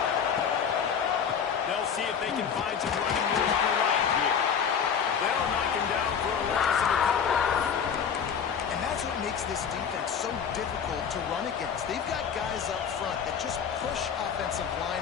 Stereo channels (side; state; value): right; quieter; 7.3 dB